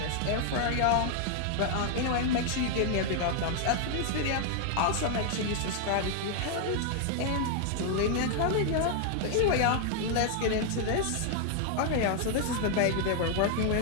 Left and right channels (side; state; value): both; different; correlation 0.00